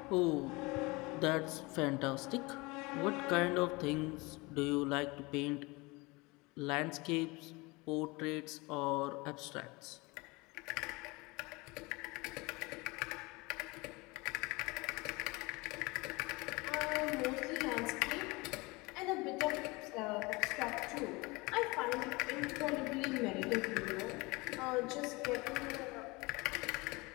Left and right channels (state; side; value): quieter; right; 24.6 dB